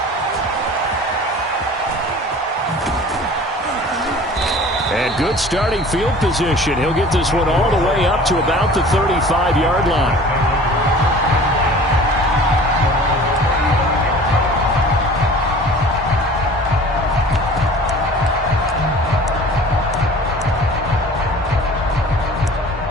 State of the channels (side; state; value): both; normal; correlation 0.44